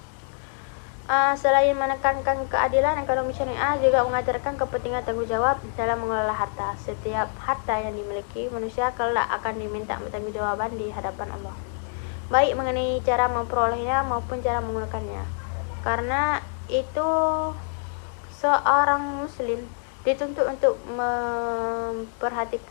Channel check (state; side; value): silent; right; 61 dB below the other